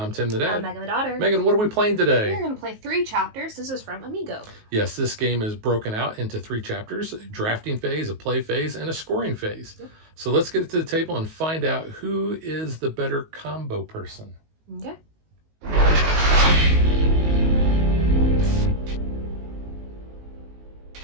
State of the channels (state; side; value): late; left; 19 ms